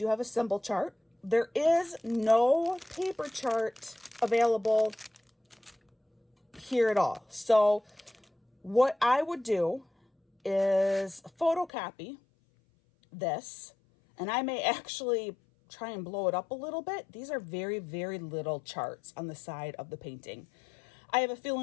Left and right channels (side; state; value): right; drops out; at 11.7 s